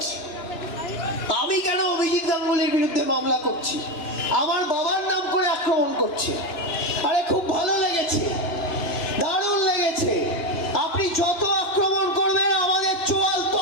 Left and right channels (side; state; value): right; late; 2.9 ms